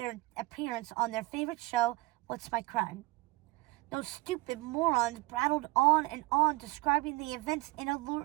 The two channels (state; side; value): quieter; left; 22.2 dB